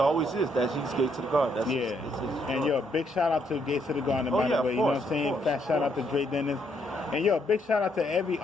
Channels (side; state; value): both; normal; correlation 0.73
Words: is. He's Gates of the Garden. That's his and yo, big shout out to Gates of the Garden, by the way. You know what I'm saying? Fat shout out to Dre Dennis. And yo, big shout out to every